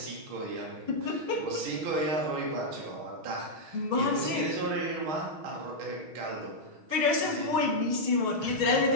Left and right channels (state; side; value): late; left; 6.3 ms